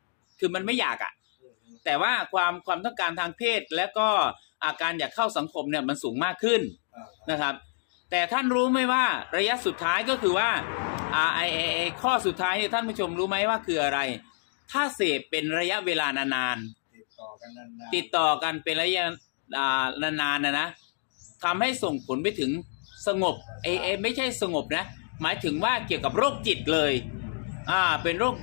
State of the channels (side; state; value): right; silent; digital silence